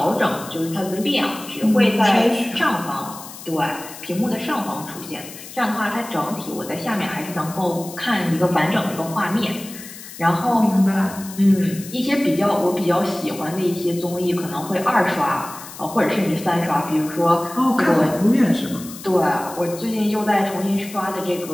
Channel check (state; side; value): noise; left; hiss, 15 dB below the sound